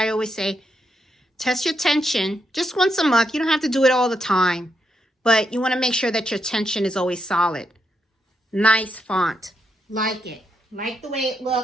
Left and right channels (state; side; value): normal; both; correlation 0.81